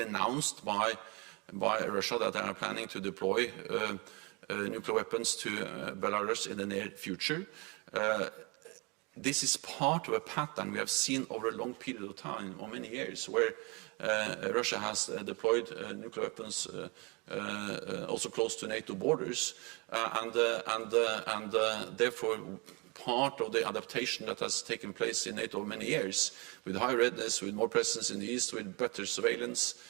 announced by Russia that they are planning to deploy nuclear weapons to Belarus in the near future. This is part of a pattern we have seen over a long period of time, or many years, where Russia has deployed nuclear weapons also close to NATO borders, and therefore part of the adaptation that has taken place in NATO over many years, with high readiness, with more presence in the east, with better surveillance,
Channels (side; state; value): left; quieter; 29.3 dB